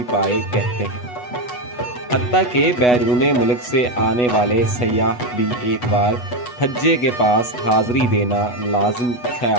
پائے کہتے ہیں۔ حتیٰ کہ بیرون ملک سے آنے والے سیاح بھی ایک بار پھجے کے پاس حاضری دینا لازم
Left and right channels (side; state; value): right; late; 8.2 ms